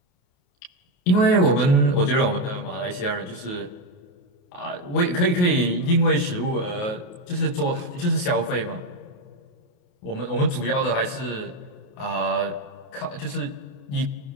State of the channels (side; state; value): right; late; 28 ms